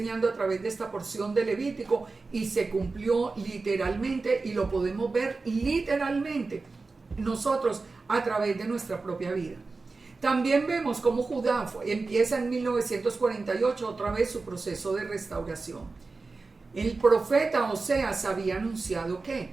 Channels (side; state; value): left; quieter; 3.9 dB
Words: a través de esta porción de Levítico, y se cumplió literalmente, y lo podemos ver literalmente nosotros a través de nuestra propia vida. También vemos cómo Judá empieza en 1948 otra vez su proceso de restauración. El profeta Oseas había anunciado